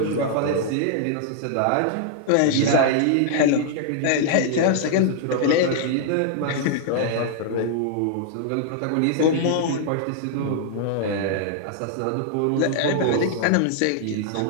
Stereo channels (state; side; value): different; both; correlation -0.01